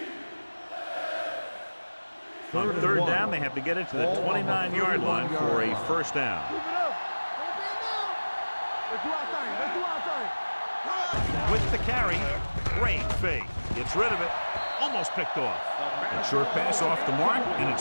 On 3rd down, they have to get it to the 29-yard line for a 1st down. Keep it up. Let's do our thing. Let's do our thing. With the carry, great fake. Gets rid of it. Almost picked off. A short pass off the mark, and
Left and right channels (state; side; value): inverted; both; correlation -1.00